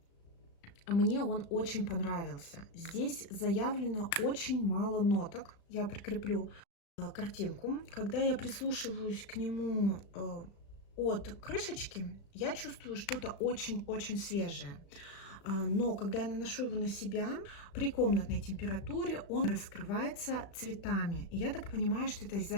Мне он очень понравился. Здесь заявлено очень мало ноток. Я прикреплю картинку. Когда я прислушиваюсь к нему от крышечки, я чувствую что-то очень-очень свежее. Но когда я наношу его на себя, при комнатной температуре он раскрывается цветами. И я так понимаю, что это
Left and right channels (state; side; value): late; right; 36 ms